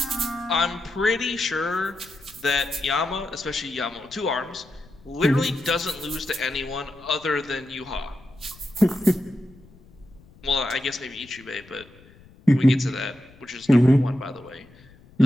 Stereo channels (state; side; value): noise; left; rumble, 25 dB below the sound